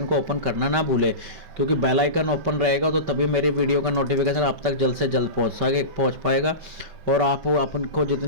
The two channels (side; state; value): left; late; 5.2 ms